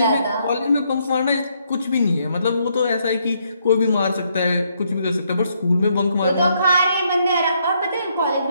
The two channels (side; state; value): both; inverted; correlation -0.73